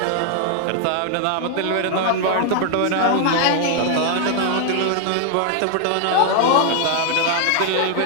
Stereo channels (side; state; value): both; different; correlation 0.00